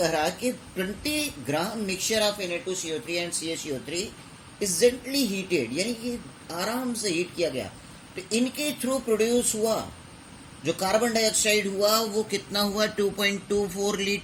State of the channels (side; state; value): both; identical; correlation 1.00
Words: रहा है कि 20 ग्राम mixture of Na2CO3 and CaCO3 is gently heated, यानी कि आराम से हीट किया गया, तो इनके थ्रू प्रोड्यूस हुआ जो कार्बन डाइऑक्साइड हुआ वो कितना हुआ? 2.24